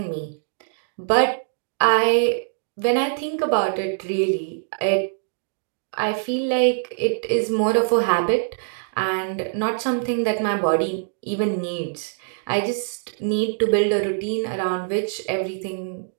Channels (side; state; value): left; silent; digital silence